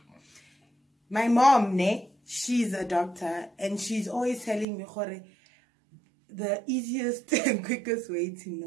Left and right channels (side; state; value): left; drops out; at 4.7 s